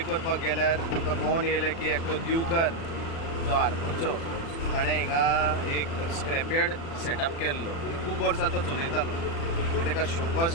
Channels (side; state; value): right; late; 36 ms